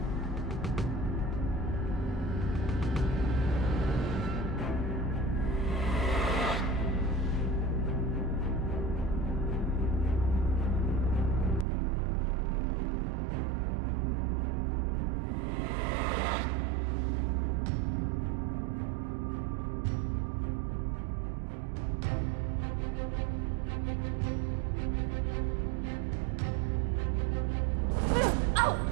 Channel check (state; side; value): drops out; left; at 11.7 s